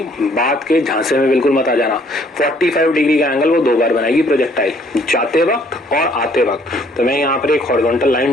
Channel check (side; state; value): both; normal; correlation 0.62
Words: बात के झांसे में बिल्कुल मत आ जाना। 45 डिग्री का एंगल वो दो बार बनाएगी प्रोजेक्टाइल, जाते वक्त और आते वक्त। तो मैं यहाँ पर एक हॉरिजॉन्टल